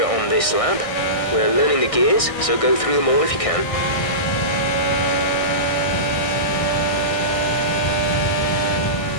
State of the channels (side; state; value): right; late; 1.6 ms